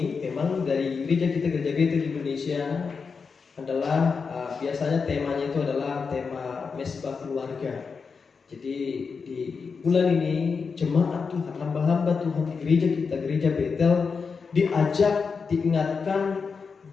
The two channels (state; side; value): quieter; right; 5.3 dB